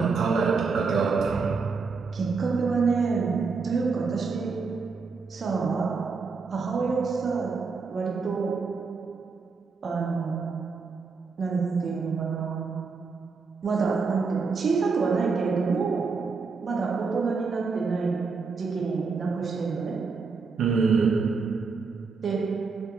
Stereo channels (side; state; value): left; quieter; 4.7 dB